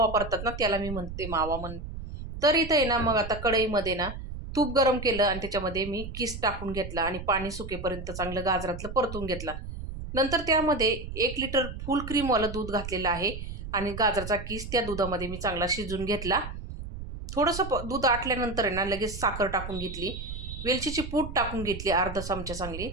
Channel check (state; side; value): noise; right; rumble, 9 dB below the sound